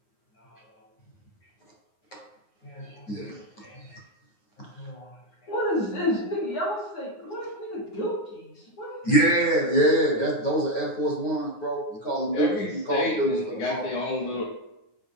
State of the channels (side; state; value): right; late; 9.6 ms